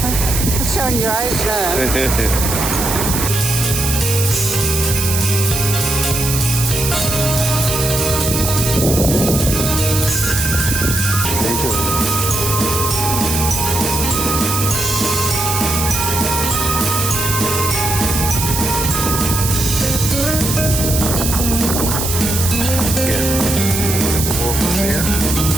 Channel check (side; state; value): right; noise; hiss, 2 dB below the sound